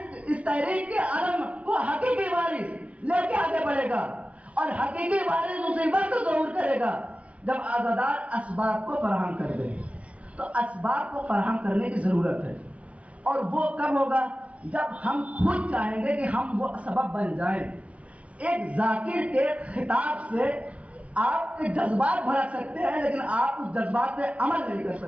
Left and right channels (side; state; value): left; late; 0.064 ms